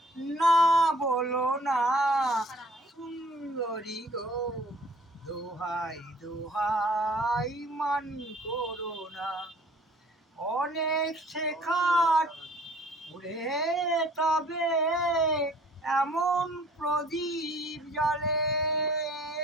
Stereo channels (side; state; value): both; normal; correlation 0.54